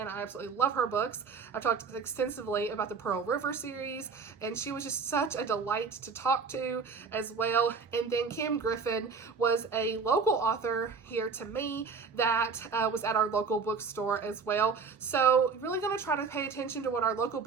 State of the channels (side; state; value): left; quieter; 5.2 dB